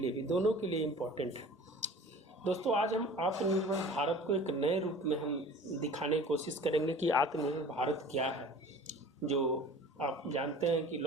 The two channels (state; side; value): normal; both; correlation 0.43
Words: भी, दोनों के लिए इम्पॉर्टेंट है दोस्तों। आज हम आत्मनिर्भर भारत को एक नए रूप में हम दिखाने की कोशिश करेंगे कि आत्मनिर्भर भारत क्या है। जो आप जानते हैं कि